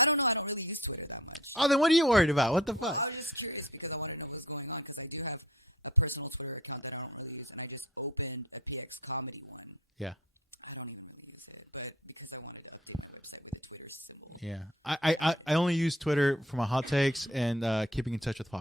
don't know. I don't really use Twitter that much. Oh, then what are you worried about? What the fuck? I was just curious because I want to know what's going on because I do have a personal Twitter account that I don't really use, and I just opened a PX comedy one. Yeah. I don't even really use it, but because I wanted to update my website with a Twitter symbol. Yeah. I only use Twitter for my hot takes and keeping in touch with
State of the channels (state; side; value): normal; both; correlation 0.48